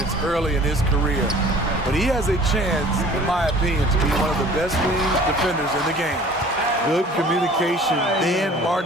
early in his career. But he has a chance, in my opinion, to be one of the best wing defenders in the game. Good communication, then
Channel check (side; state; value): both; normal; correlation 0.48